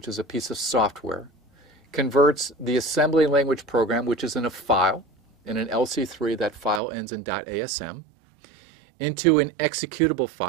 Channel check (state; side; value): drops out; left; at 6.8 s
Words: is a piece of software, converts the assembly language program, which is in a file, in an LC3, that file ends in .asm, into an executable